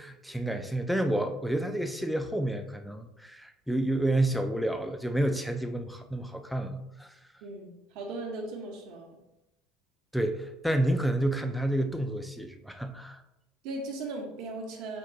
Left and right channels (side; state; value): both; normal; correlation 0.84